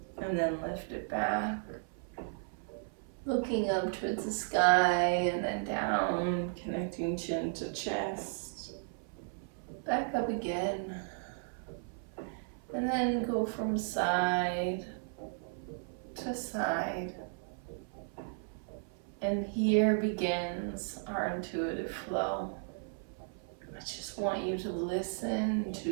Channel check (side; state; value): left; silent; 54 dB below the other